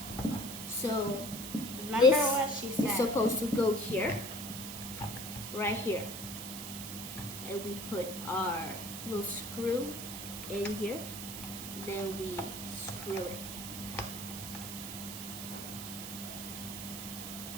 So Remember this what she is said. supposed to go here, right here. And we put our little screw in here. Then we screw it.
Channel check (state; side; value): noise; right; hiss, 8 dB below the sound